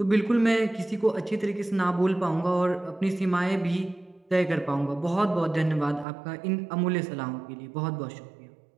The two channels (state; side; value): drops out; left; at 6.1 s